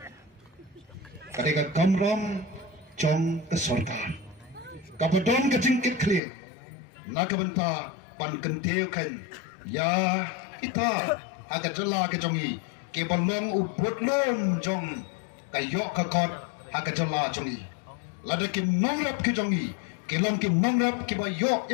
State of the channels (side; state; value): right; drops out; at 6.2 s